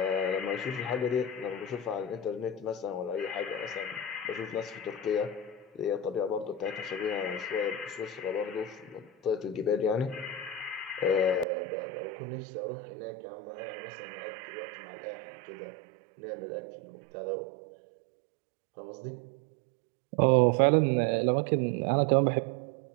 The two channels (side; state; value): left; drops out; at 11.5 s